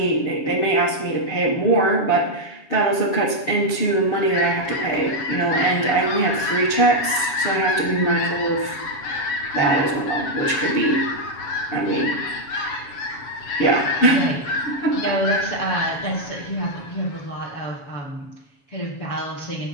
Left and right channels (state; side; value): late; right; 7.2 ms